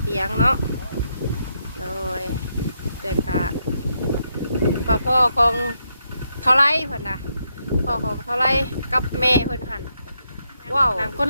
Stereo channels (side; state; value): both; inverted; correlation -0.80